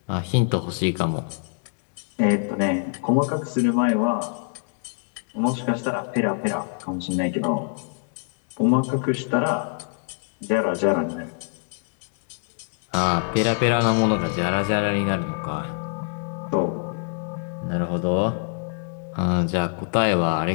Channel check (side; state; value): right; silent; 59 dB below the other